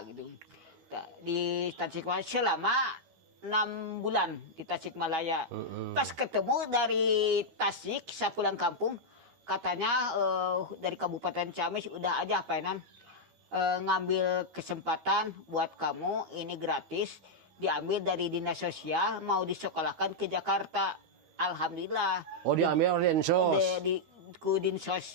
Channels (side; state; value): left; late; 13 ms